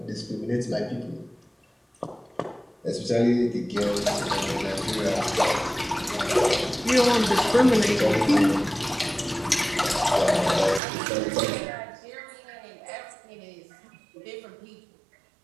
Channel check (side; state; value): left; drops out; at 10.8 s